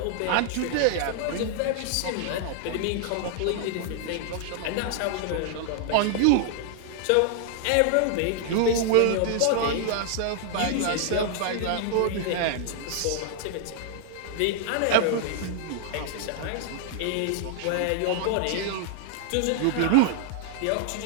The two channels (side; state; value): both; different; correlation 0.00